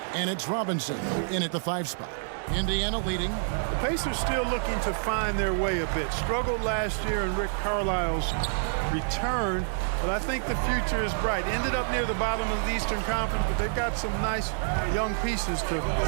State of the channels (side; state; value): left; silent; 56 dB below the other